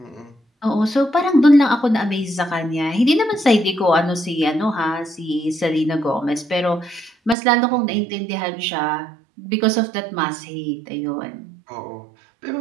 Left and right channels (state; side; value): drops out; left; at 7.4 s